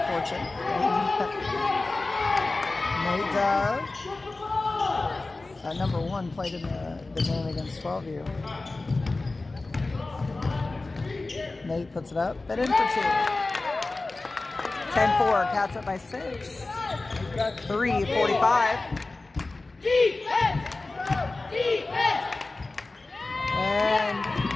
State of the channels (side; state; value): right; quieter; 3.3 dB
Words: fortune. Nate Dove. Number 1 played in the game against 12U. Nate puts it up, but in for 2. 10-4, Cats up by 6. 3:45. Defense! And